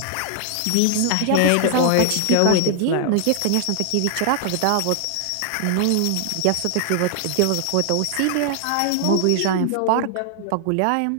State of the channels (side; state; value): both; different; correlation 0.00